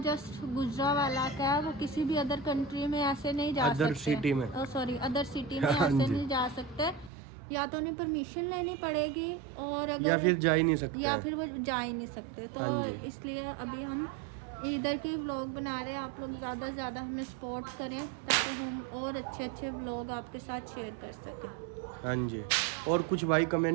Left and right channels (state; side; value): drops out; left; at 7.1 s